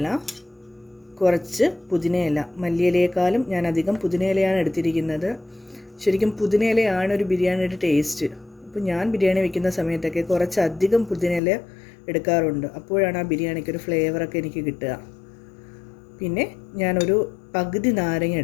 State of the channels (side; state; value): right; drops out; at 11.4 s